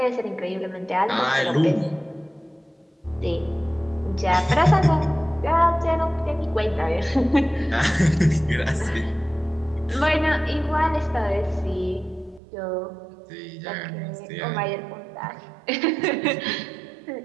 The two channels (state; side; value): drops out; left; at 12.4 s